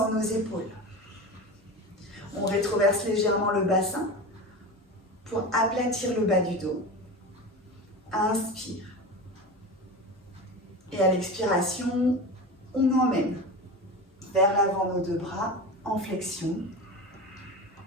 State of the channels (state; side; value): normal; both; correlation 0.28